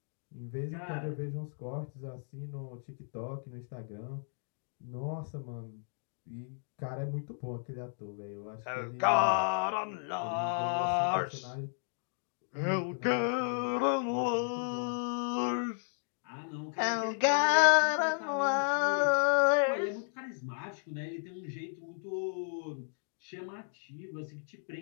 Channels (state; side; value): silent; right; digital silence